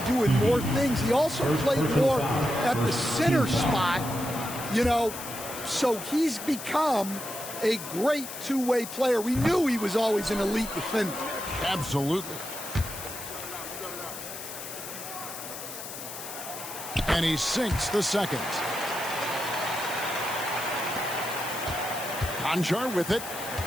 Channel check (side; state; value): left; noise; hiss, 10 dB below the sound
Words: doing more things. He also played more at the center spot, you know, so he's become a great two-way player. We knew he was always an elite defender. Absolutely. And he sinks the second. Conjar with it.